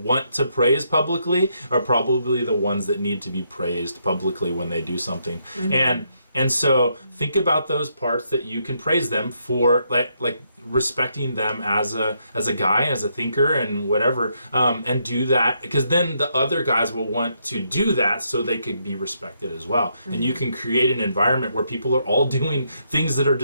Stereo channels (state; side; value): inverted; both; correlation -0.76